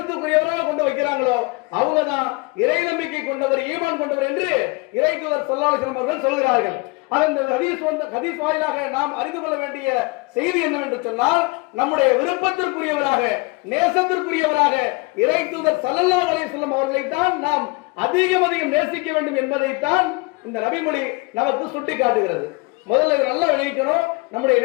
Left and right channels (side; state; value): right; quieter; 25.6 dB